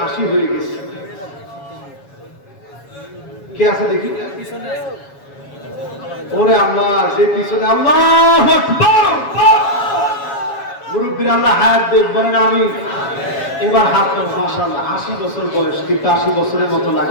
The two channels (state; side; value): late; right; 7.2 ms